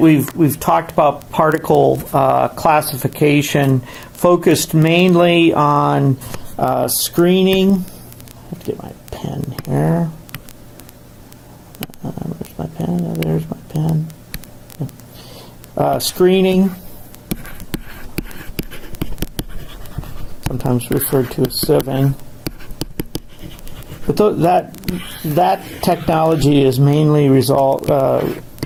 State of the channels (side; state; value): both; identical; correlation 1.00